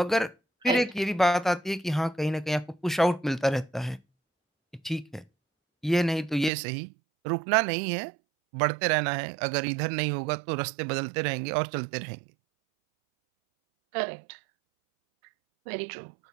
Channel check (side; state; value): left; drops out; at 6.5 s